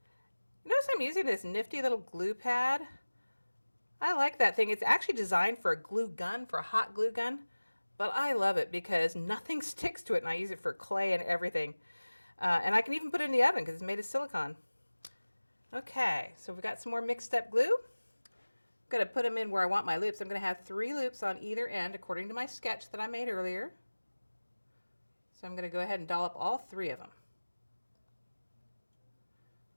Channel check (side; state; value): both; inverted; correlation -1.00